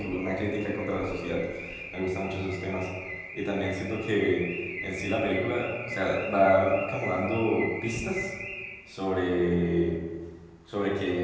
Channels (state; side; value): identical; both; correlation 1.00